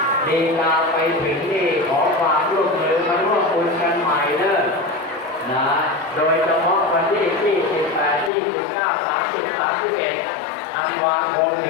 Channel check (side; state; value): right; drops out; at 8.3 s